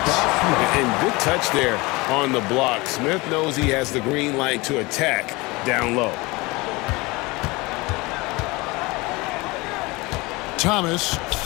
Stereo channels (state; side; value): quieter; right; 23.8 dB